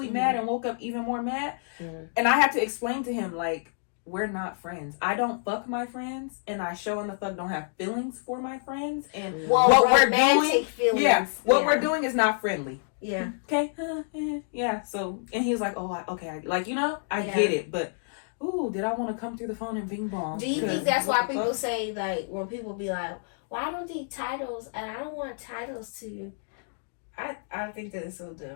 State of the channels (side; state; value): right; silent; digital silence